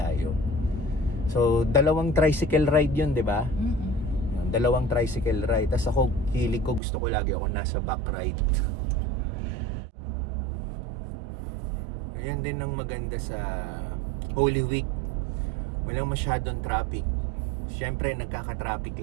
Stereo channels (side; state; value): left; drops out; at 6.8 s